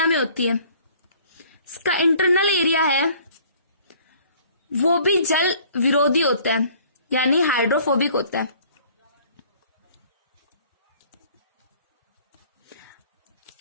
में होती है। इसका इंटरनल एरिया है वो भी जल विरोधी होता है यानी हाइड्रोफोबिक होता है।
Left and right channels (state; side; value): inverted; both; correlation -0.55